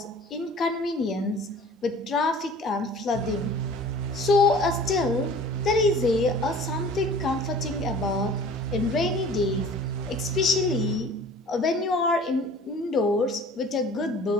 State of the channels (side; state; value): both; normal; correlation 0.46